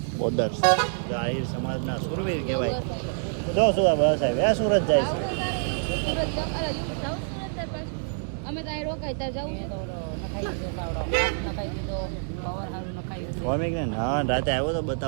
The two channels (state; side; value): silent; left; digital silence